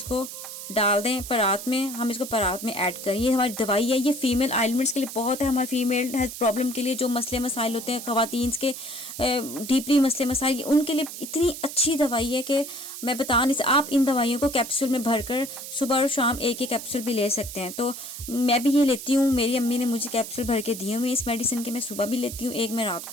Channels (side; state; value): right; noise; hiss, 10 dB below the sound